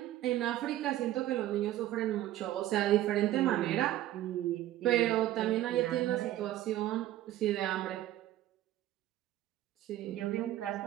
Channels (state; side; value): quieter; left; 14.1 dB